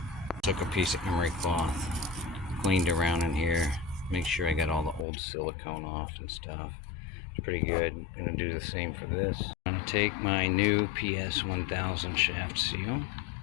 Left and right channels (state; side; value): drops out; right; at 5.1 s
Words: Took a piece of emery cloth, cleaned around in here, make sure I got all the old silicone off and stuff. It's pretty good. I'm going to do the same for this. I'm going to take my new PS 1000 shaft seal.